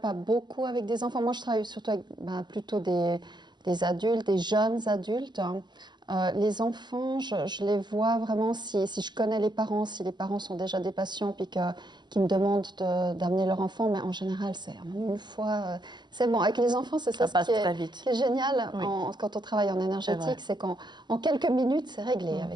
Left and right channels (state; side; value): late; left; 0.21 ms